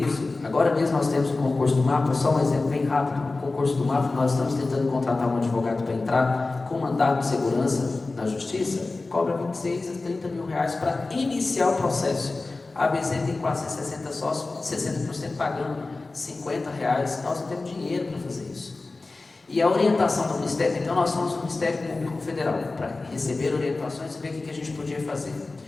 Agora mesmo nós temos o concurso do MAPA, só um exemplo bem rápido. O concurso do MAPA, nós estamos tentando contratar um advogado para entrar com mandato de segurança na justiça, cobra 26 a 30 mil reais para iniciar o processo. A ABZ tem quase 60 sócios, 60% pagando 50 reais, nós não temos dinheiro para fazer isso. E a orientação do Ministério, então nós fomos no Ministério Público Federal para receber orientações e ver o que a gente podia fazer.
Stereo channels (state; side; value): quieter; right; 3.4 dB